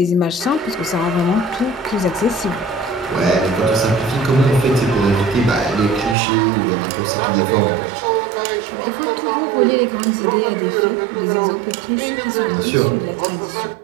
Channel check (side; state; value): left; drops out; at 6.2 s